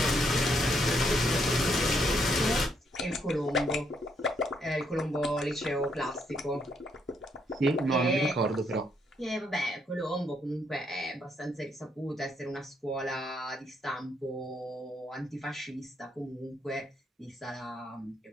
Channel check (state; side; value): normal; both; correlation 0.74